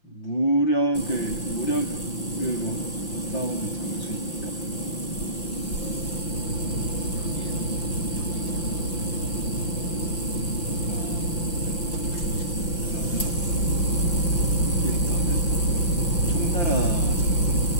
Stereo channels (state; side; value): late; right; 5.8 ms